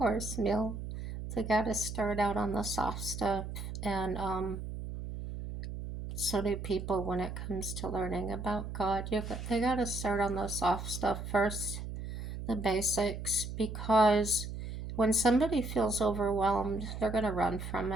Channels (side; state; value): right; noise; hum, 7 dB below the sound